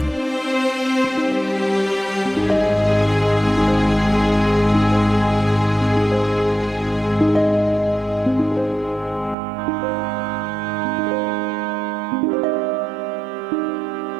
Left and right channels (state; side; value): drops out; left; at 9.3 s